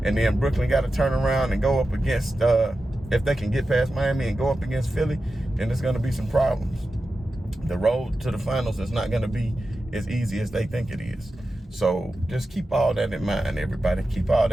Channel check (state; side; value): normal; both; correlation 0.92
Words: and then Brooklyn got to turn around and go up against, if they can get past Miami and go up against Philly, then there's going to be some problems. The road to the finals is not going to be as easy as they think it is. So just keep all that in mind, everybody. Keep all